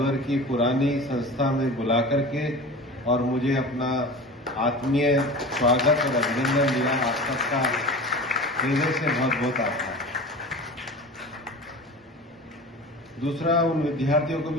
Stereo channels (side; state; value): both; normal; correlation 0.35